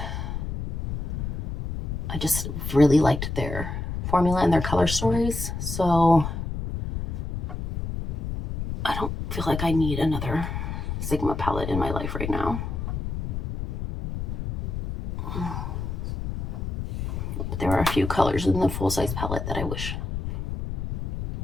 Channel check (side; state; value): left; noise; rumble, 4 dB below the sound